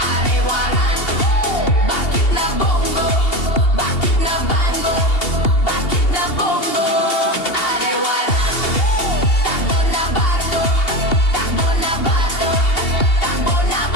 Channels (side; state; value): right; late; 2.8 ms